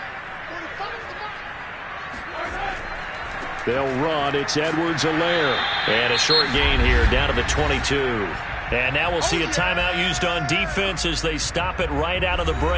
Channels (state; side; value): identical; both; correlation 1.00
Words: They'll run. It's Edwards-Helaire. And a short gain here down to the 22. And now we'll see a timeout used on defense as they stop it right out of the